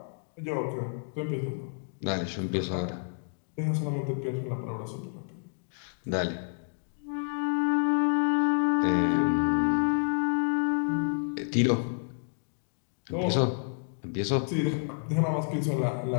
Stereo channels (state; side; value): silent; right; digital silence